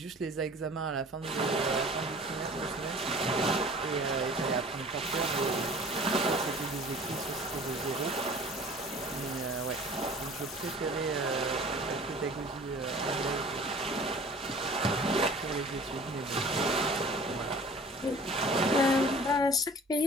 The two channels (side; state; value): both; normal; correlation 0.46